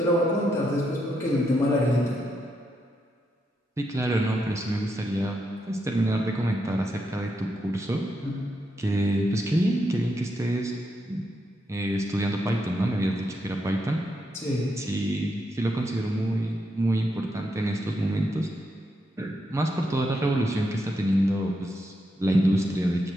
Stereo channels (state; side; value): normal; both; correlation 0.82